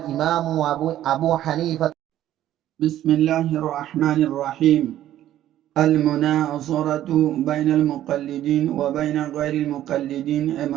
أبو حنيفة. بسم الله الرحمن الرحيم. المناصرة بين المقلدين وبين غير المقلدين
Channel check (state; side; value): quieter; left; 12.6 dB